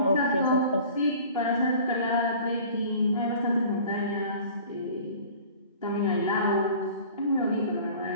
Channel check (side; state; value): both; inverted; correlation -0.45